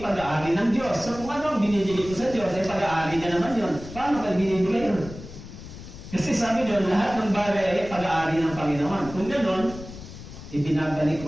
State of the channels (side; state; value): left; noise; rumble, 14 dB below the sound